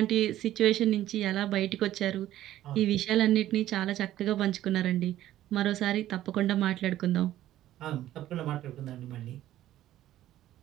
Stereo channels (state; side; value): quieter; left; 13.5 dB